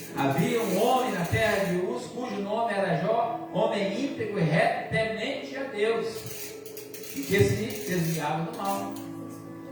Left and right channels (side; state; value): both; identical; correlation 1.00